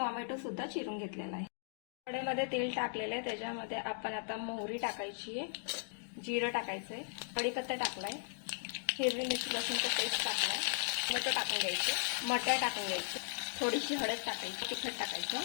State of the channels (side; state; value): right; silent; digital silence